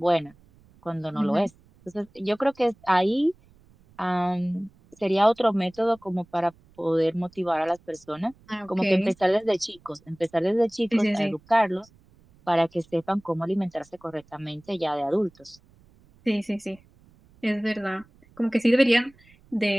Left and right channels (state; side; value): noise; right; rumble, 29 dB below the sound